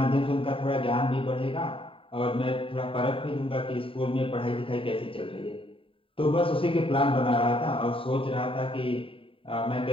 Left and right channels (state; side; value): late; right; 0.26 ms